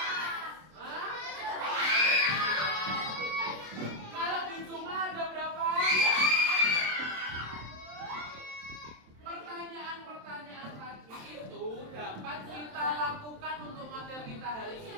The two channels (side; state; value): left; late; 27 ms